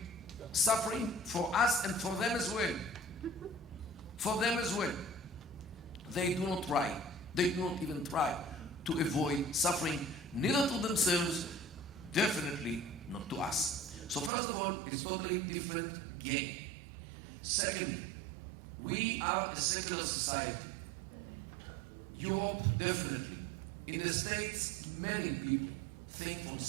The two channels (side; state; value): left; drops out; at 14.3 s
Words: suffering for us and for them as well. For them as well. They do not try. They do not even try to avoid suffering, neither to themselves, definitely not to us. So first of all, it's totally different game. Secondly, we are a secular society. Europe, definitely. In the States, many people think from